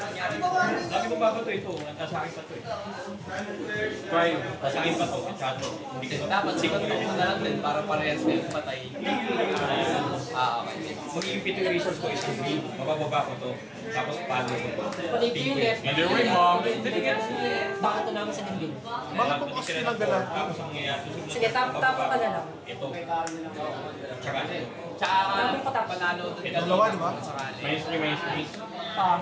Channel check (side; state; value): both; identical; correlation 1.00